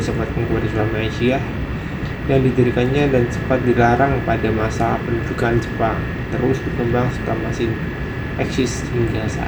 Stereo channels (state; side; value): identical; both; correlation 1.00